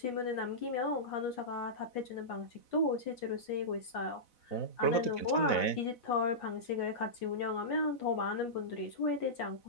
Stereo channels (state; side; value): late; right; 4.0 ms